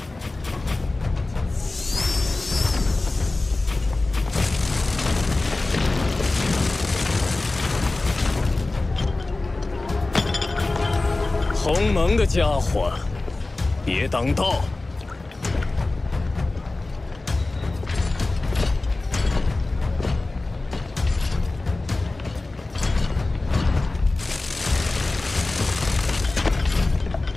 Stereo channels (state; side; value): quieter; right; 3.1 dB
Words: 鸿蒙的家伙，别挡道！